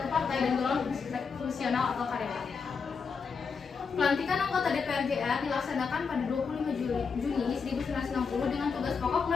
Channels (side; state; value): right; quieter; 5.5 dB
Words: partai dan golongan fungsional atau karyawan. Pelantikan anggota DPR GR dilaksanakan pada 25 Juni 1960 dengan tugas pokok